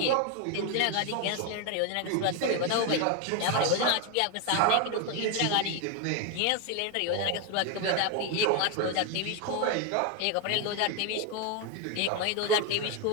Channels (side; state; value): both; different; correlation 0.01